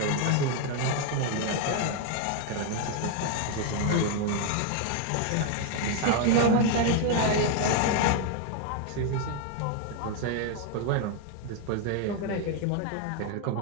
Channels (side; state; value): both; different; correlation 0.01